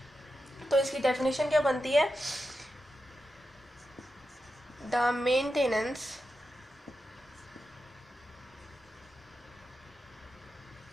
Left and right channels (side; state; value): both; normal; correlation 0.89